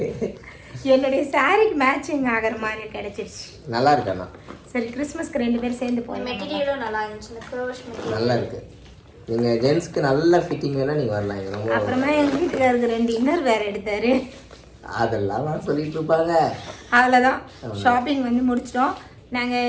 என்னுடைய சாரிக்கு மேட்சிங் ஆகிற மாதிரி கிடைச்சிருச்சு. நல்லா இருக்கு அண்ணா. சரி, கிறிஸ்மஸ்க்கு 2 பேரும் சேர்ந்து போகலாம். மெட்டீரியலும் நல்லா இருந்துச்சு. இந்த க்ரோஷ் மெட்டீரியல் நல்லா இருக்கு. நீங்கள் ஜென்ஸ்க்கு நல்ல ஃபிட்டிங் வேணா நீங்கள் வரலாம். இது ரொம்ப அப்புறமா எங்கள் வீட்டுக்காரருக்கு 2 இன்னர் வேறு எடுத்தாரு. அதெல்லாம் சொல்லிட்டு இருப்பாங்க. அவ்வளோதான், ஷாப்பிங் வந்து முடிச்சிட்டோம்.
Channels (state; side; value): identical; both; correlation 1.00